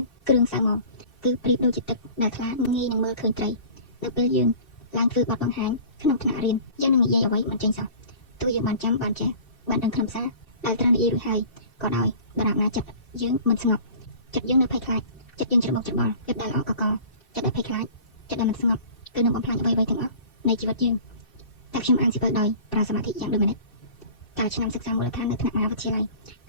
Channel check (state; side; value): late; right; 2.6 ms